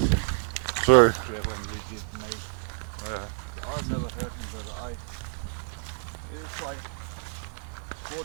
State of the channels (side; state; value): left; silent; 59 dB below the other